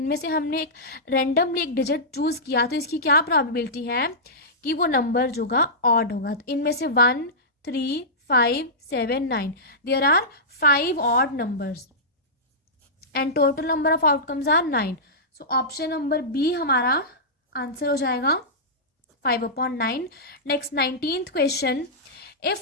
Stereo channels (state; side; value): normal; both; correlation -0.15